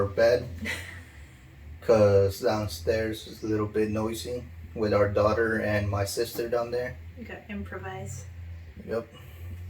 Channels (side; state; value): both; identical; correlation 1.00